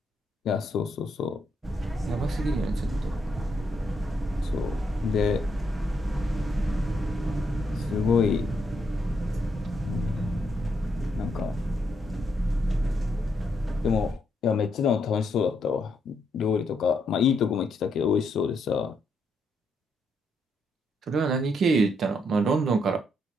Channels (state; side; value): normal; both; correlation 0.77